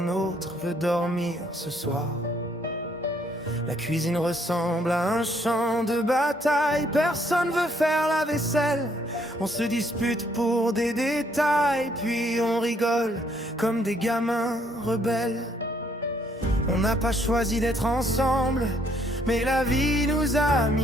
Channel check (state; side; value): normal; both; correlation 0.68